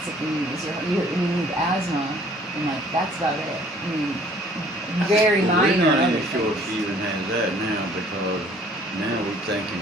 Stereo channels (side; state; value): both; normal; correlation 0.56